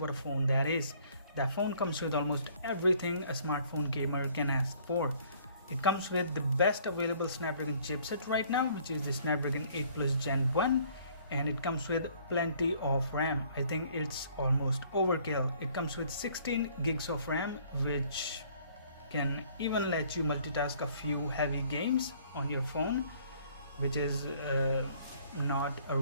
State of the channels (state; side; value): inverted; both; correlation -0.59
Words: a phone that is. That phone comes with almost everything a smartphone gamer can ask for. It comes with the best available Snapdragon chipset right now, which is the Snapdragon 8 Plus Gen 1, and it comes with plenty of RAM. I think it's almost overkill. It comes with 16 gigs of RAM, which can even let you multitask a few heavy games on your phone, which is not a